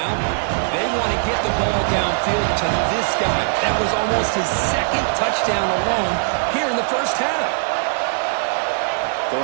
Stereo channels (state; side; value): silent; left; 66 dB below the other